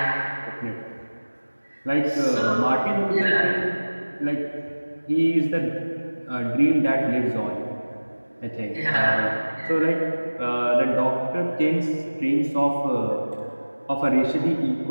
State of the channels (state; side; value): inverted; both; correlation -1.00